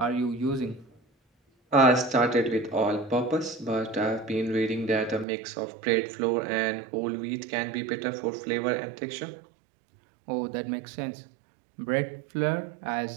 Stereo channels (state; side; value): drops out; left; at 5.2 s